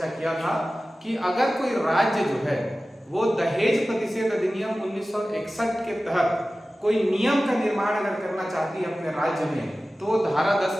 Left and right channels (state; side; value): normal; both; correlation 0.96